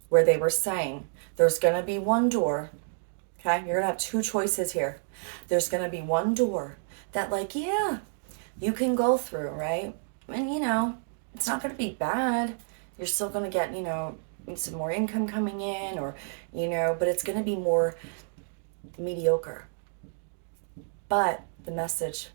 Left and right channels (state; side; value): silent; left; digital silence